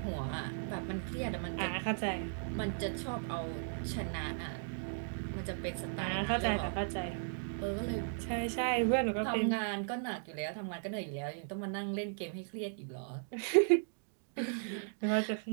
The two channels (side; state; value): left; silent; digital silence